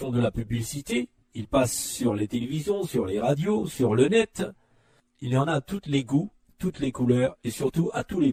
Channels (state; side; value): identical; both; correlation 1.00